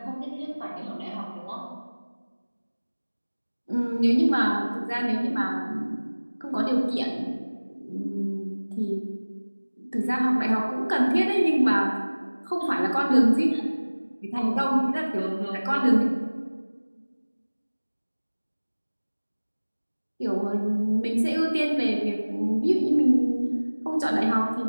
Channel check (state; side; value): inverted; both; correlation -1.00